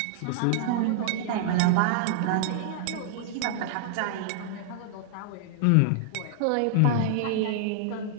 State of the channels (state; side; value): different; both; correlation -0.01